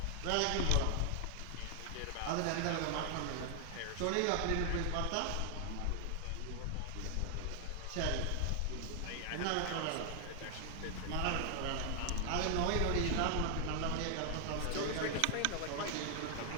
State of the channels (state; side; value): different; both; correlation 0.00